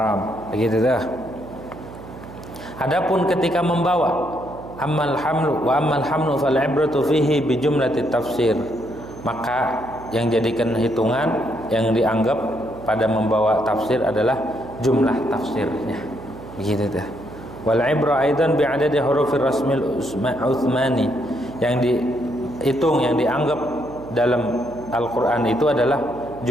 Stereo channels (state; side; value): noise; right; hum, 15 dB below the sound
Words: Begitu dah. Adapun ketika membawa, ammal hamlu fal ibratu fihi bi jumlati tafsir. Maka yang jadikan hitungan, yang dianggap pada membawa tafsir adalah jumlah tafsirnya. Begitu dah. Wal ibra aidan bi adadi hurufir rasmil Utsmani. Yang dihitung, yang dianggap dalam Al-Qur'an itu adalah